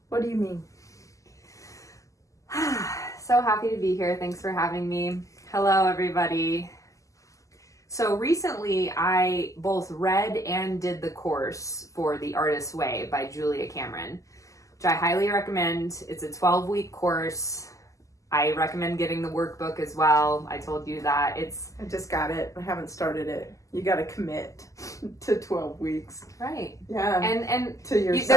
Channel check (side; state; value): right; late; 0.16 ms